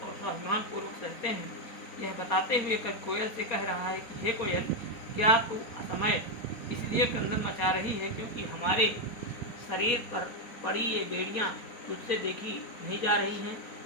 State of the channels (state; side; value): late; right; 4.2 ms